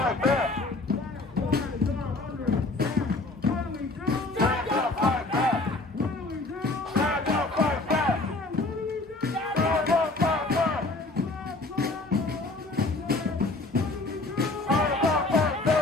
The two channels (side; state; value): right; quieter; 3.1 dB